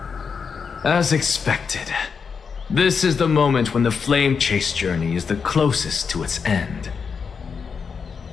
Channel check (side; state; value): right; quieter; 5.9 dB